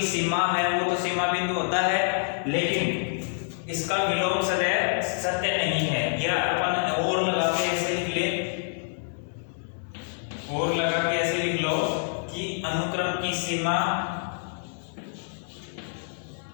सीमा है वो तो सीमा बिंदु होता है, लेकिन इसका विलोम सदैव सत्य नहीं है। या अपन और लगा के ऐसे लिख ले, और लगा के ऐसे लिख लो कि अनुक्रम की सीमा,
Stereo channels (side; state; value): right; silent; digital silence